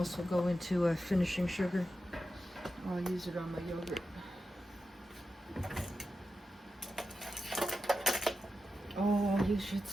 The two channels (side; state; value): both; normal; correlation 0.90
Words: will go into a finishing sugar. Or I'll use it on my yogurt. Oh, you should